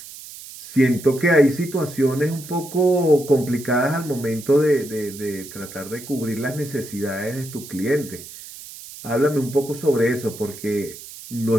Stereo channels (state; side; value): noise; right; hiss, 15 dB below the sound